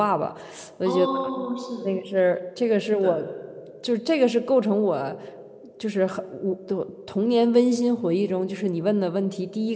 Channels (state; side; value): identical; both; correlation 1.00